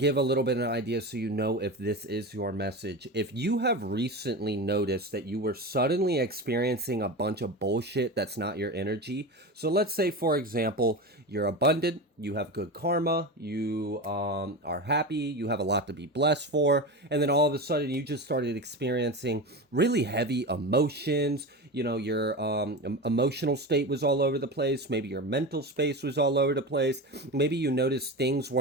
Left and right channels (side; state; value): both; normal; correlation 0.24